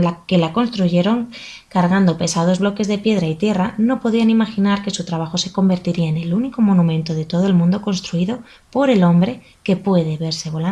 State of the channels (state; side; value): identical; both; correlation 1.00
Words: que la construyeron, cargando pesados bloques de piedra y tierra, no podían imaginar que su trabajo se convertiría en el único monumento de todo el mundo construido por el hombre que puede verse